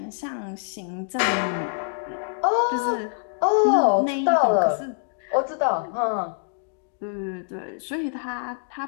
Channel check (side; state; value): right; silent; digital silence